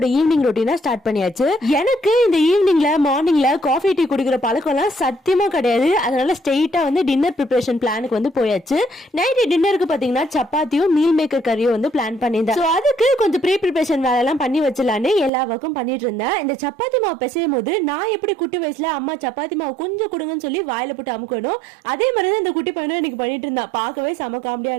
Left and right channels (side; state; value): left; drops out; at 15.3 s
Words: ஈவினிங் ரொட்டீனா ஸ்டார்ட் பண்ணியாச்சு. எனக்கு இந்த ஈவினிங்ல மார்னிங்ல காஃபி டீ குடிக்கிற பழக்கம் எல்லாம் சத்தியமா கிடையாது. அதனால ஸ்ட்ரெயிட்டா வந்து டின்னர் ப்ரிப்பரேஷன் பிளானுக்கு வந்து போயாச்சு. நைட் டின்னருக்கு பாத்தீங்கன்னா சப்பாத்தியும் மீல் மேக்கர் கறியும் வந்து பிளான் பண்ணியிருந்தேன். சோ அதுக்கு கொஞ்சம் ப்ரீ ப்ரிப்பரேஷன் வேலை எல்லாம் பண்ணி வச்சலான்னு எல்லா ஒர்க்கும் பண்ணிட்டு இருந்தேன். இந்த சப்பாத்தி மாவு பிசையும் போது நான் எப்படி குட்டி வயசுல அம்மா சப்பாத்தி மாவு கொஞ்சம் கொடுங்கன்னு சொல்லி வாயில போட்டு அமுக்கணும், அதே மாதிரி இந்த குட்டி பையனும் எனக்கு பண்ணிட்டு இருந்தான். பார்க்கவே செம காமெடியா